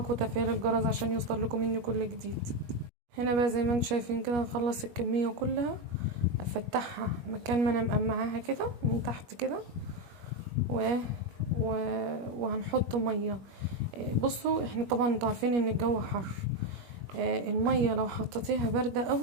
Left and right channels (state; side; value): late; left; 21 ms